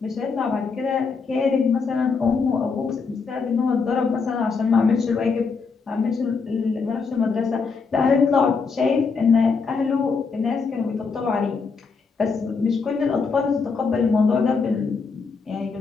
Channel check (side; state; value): right; quieter; 5.0 dB